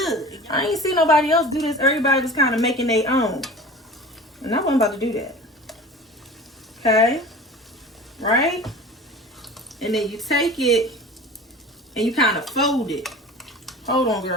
I ain't see nobody else do this. Everybody was kind of making their own. And I wasn't about to do that. Okay? Right? And then you take it and you kind of fold it. Hold on,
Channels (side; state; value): both; normal; correlation 0.38